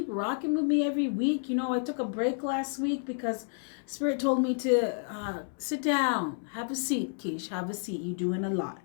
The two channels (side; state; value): right; silent; 58 dB below the other